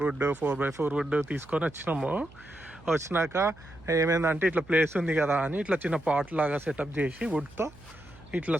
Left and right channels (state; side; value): noise; right; hum, 23 dB below the sound